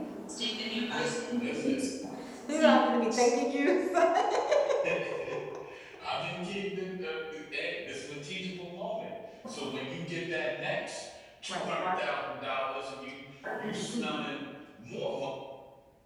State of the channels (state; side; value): identical; both; correlation 1.00